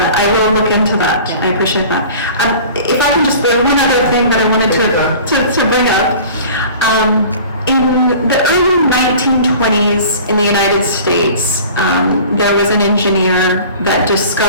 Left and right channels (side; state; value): both; inverted; correlation -0.43